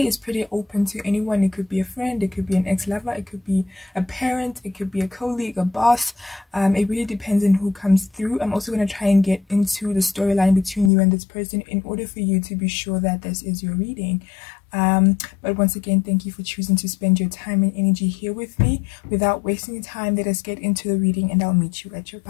is pretty open to anyone. It could be a friend, it could be an ex-lover, it could be a parent, it could be a colleague, a boss. It really depends on who comes through. I'm also going to try and get into the storyline between you and this person in order for you to be sure that this is your reading. But once again, thank you for choosing to spend your time and energy here with me. Without wasting time, let us get into the reading and I'll meet you at your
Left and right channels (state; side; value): drops out; right; at 10.9 s